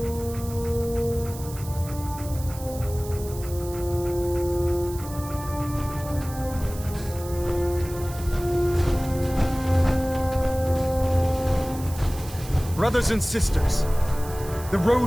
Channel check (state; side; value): noise; right; hiss, 15 dB below the sound